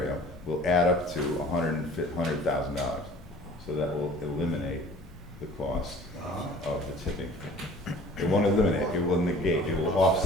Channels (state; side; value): normal; both; correlation 0.48